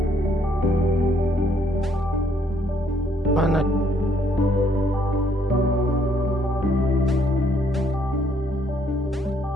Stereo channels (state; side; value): normal; both; correlation 0.68